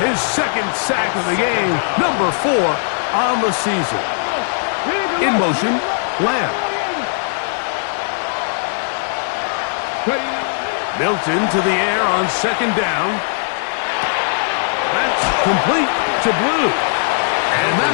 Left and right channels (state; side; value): silent; right; digital silence